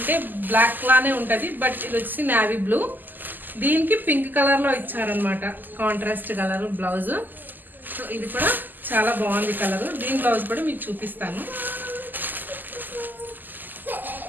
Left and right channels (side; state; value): left; late; 0.087 ms